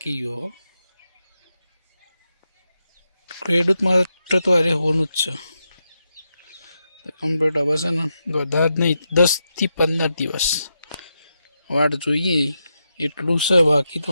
ગયો. ખેડૂત માટે તો અરે હોનું જ છે કમ્પ્લીટ. હવે છે ને વધારે જ નહીં 10 થી 15 દિવસ વાટ જોઈએ એટલું છે. બાકી તો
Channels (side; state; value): both; inverted; correlation -0.85